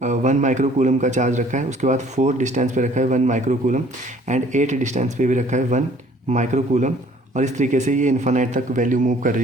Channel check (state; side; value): normal; both; correlation 0.56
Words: माइक्रो कूलम का चार्ज रखा है। उसके बाद 4 डिस्टेंस पे रखा है 1 माइक्रो कूलम एंड 8 डिस्टेंस पे भी रखा है 1 माइक्रो कूलम, और इस तरीके से ये इन्फानाइट तक वैल्यू मूव कर